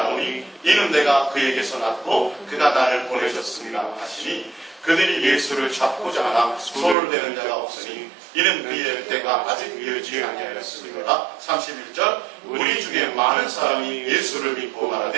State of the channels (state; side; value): drops out; left; at 7.0 s